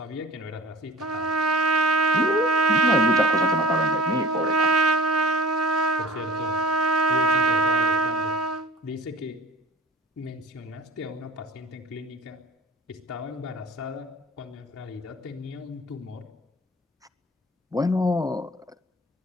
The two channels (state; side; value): normal; both; correlation 0.41